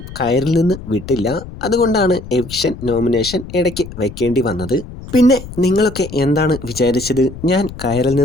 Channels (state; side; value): noise; left; rumble, 13 dB below the sound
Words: കയറിൽ നിന്ന് വിട്ടില്ല, അതുകൊണ്ടാണ് എവിക്ഷൻ നോമിനേഷൻ ഇടയ്ക്ക് വെക്കേണ്ടി വന്നത്. പിന്നെ നിങ്ങളൊക്കെ എന്താണ് വിചാരിച്ചത്, ഞാൻ കയറിൽ